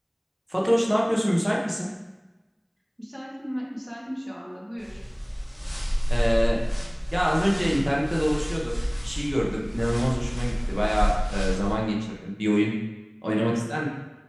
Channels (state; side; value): identical; both; correlation 1.00